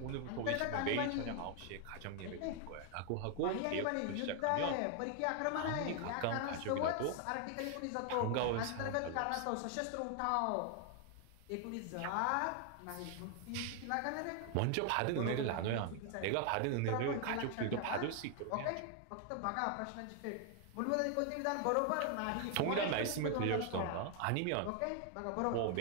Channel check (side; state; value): both; different; correlation 0.00